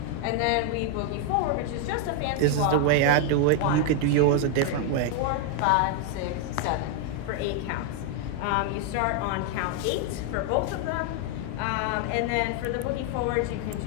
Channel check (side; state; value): both; different; correlation 0.00